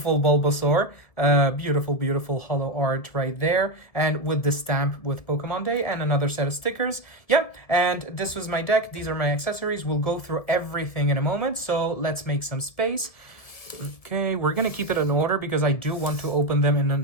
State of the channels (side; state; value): right; late; 1.7 ms